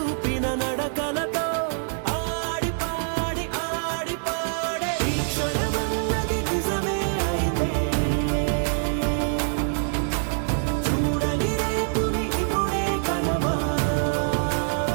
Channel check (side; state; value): left; silent; digital silence